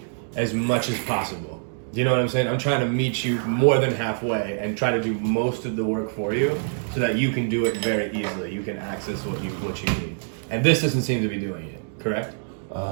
as much as possible. Do you know what I'm saying? I'm trying to meet you more than halfway and try to do most of the work for you so that you can do it very easily. You can access what you need. And this doesn't seem to be doing it, correct?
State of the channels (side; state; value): left; silent; digital silence